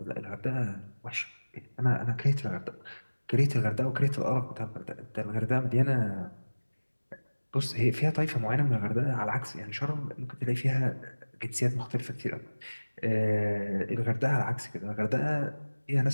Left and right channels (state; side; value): inverted; both; correlation -1.00